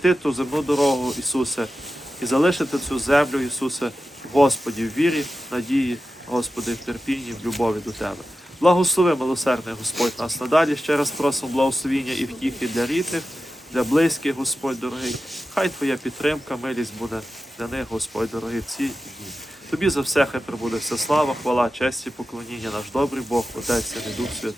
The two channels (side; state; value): both; normal; correlation 0.92